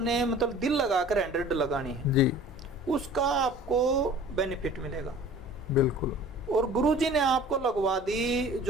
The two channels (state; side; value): normal; both; correlation 0.46